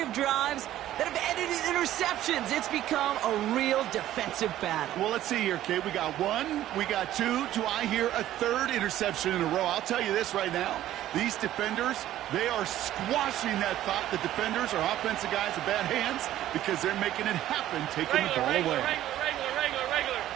drives that have ended in interceptions. It's become a real defensive battle. Well, let's see here, Kate. We got 1, we got 2. Do I hear a 3rd interception in a row? I'll tell you this right now. These defenders, they are squashing that thought the defenders are offensive guys with bad hands because they're making it happen, taking the ball away. Regular.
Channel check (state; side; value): quieter; left; 13.2 dB